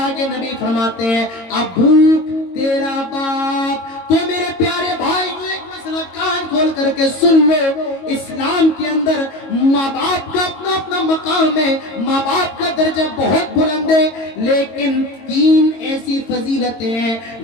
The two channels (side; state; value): right; late; 22 ms